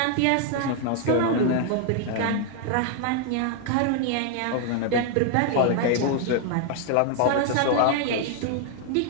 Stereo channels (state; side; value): different; both; correlation 0.00